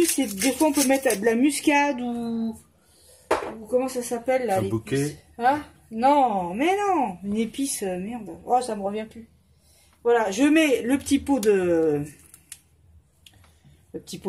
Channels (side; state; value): both; identical; correlation 1.00